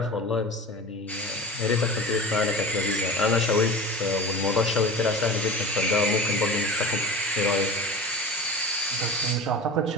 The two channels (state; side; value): normal; both; correlation 0.32